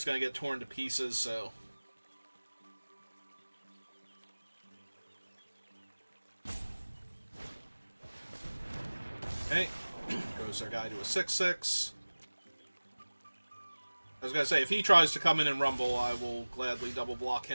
gonna get torn to pieces, so... Okay, goes their guy to a 6-6. I was gonna say, if he tries to come in and rumble, I will gladly double block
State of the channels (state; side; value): inverted; both; correlation -1.00